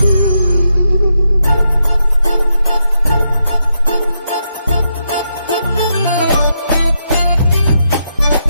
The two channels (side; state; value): both; inverted; correlation -0.82